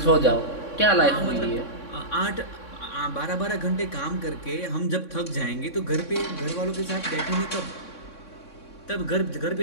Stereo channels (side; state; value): right; late; 3.6 ms